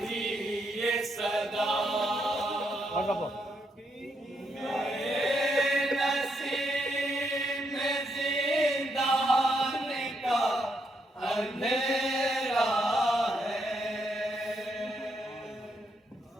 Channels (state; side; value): normal; both; correlation 0.77